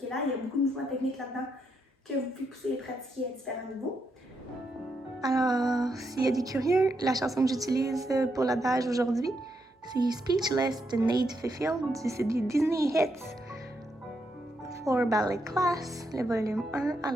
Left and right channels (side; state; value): both; normal; correlation 0.80